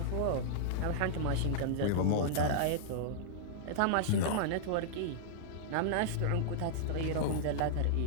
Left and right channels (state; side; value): different; both; correlation -0.02